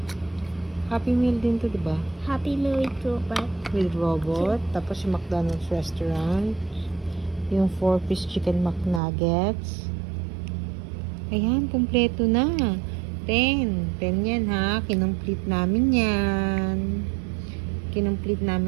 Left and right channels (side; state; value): left; drops out; at 9.0 s